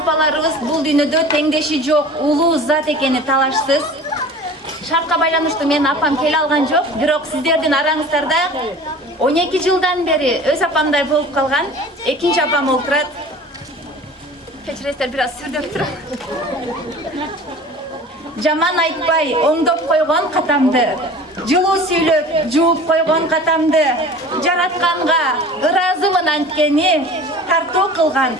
бул дүйнөдө теңдеши жок, улуу зат экени талашсыз. Шартка байланыштуу менин апам келе алган жок, бирок сиздердин араңыздарда 12 жылдан бери өз апамдай болуп калган экинчи апам олтурат. Кечиресиздер, бир аз сүрдөп турам. Жаман айтпай, оңдоп койгон катамды, жылуу сүйлөп, жууп койгон катамды, жаратканга ыраазымын анткени, тартуу кылган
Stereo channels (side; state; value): both; normal; correlation 0.41